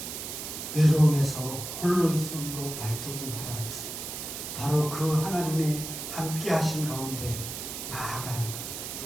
외로움에서 홀로 있음으로 발돋움하라는 것은 바로 그 하나님의 함께 하신 가운데 나아가는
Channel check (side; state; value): right; noise; hiss, 7 dB below the sound